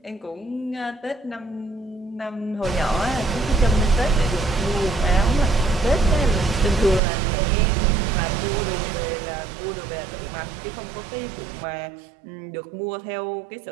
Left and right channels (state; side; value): drops out; left; at 7.0 s